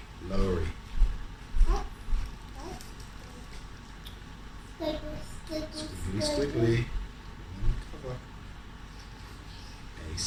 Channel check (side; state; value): both; identical; correlation 1.00